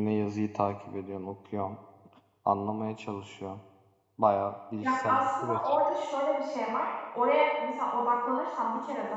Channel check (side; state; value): both; identical; correlation 1.00